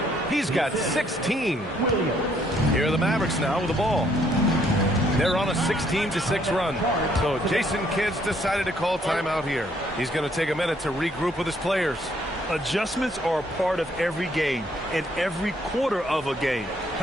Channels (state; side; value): normal; both; correlation 0.68